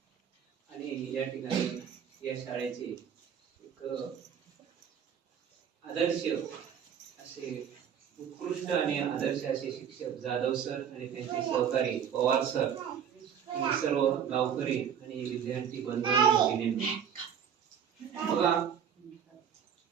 आणि या ठिकाणी या शाळेचे एक आदर्श असे उत्कृष्ट आणि आदर्श असे शिक्षक जाधव सर आणि त्यांचे सहकारी पवार सर आणि सर्व गावकरी आणि विद्यार्थी बंधू बघा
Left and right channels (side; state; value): left; quieter; 8.3 dB